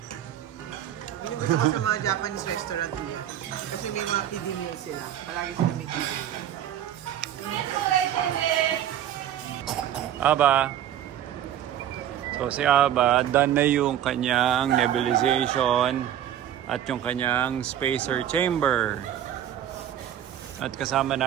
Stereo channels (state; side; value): quieter; left; 10.9 dB